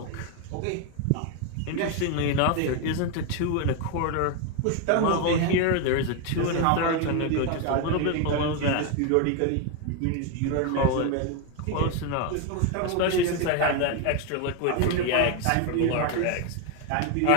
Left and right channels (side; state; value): both; different; correlation 0.01